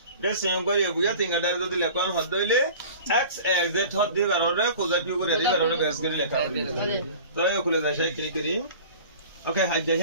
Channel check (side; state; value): both; inverted; correlation -0.41